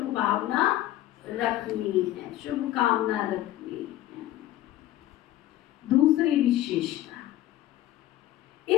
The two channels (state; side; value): quieter; right; 14.2 dB